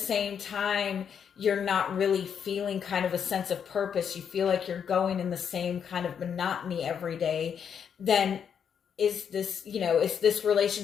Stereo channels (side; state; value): right; quieter; 7.7 dB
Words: time, you're not really feeling kind of a sense of purpose, you feel like you're going in the same kind of monotony every day, then is this